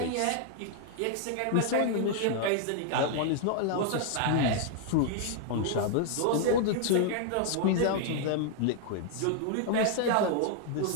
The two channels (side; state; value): both; different; correlation -0.01